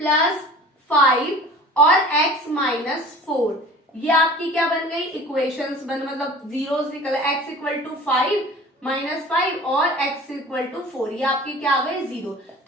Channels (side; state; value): both; normal; correlation 0.43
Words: 5 और x माइनस 4, ये आपकी क्या बन गई, इक्वेशंस बन, मतलब जीरोस निकल, x इक्वल टू 5 माइनस 5 और x इक्वल टू 4, ये आपकी क्या आ गए, जीरो।